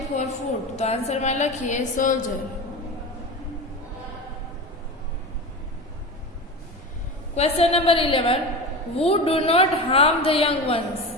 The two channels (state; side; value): normal; both; correlation 0.26